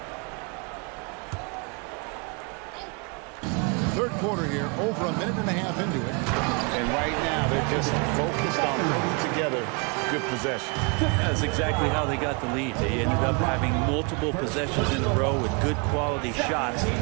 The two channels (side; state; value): left; quieter; 32.1 dB